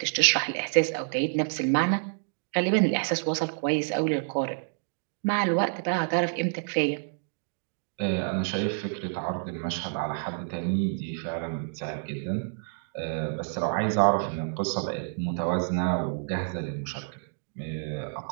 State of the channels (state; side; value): silent; left; digital silence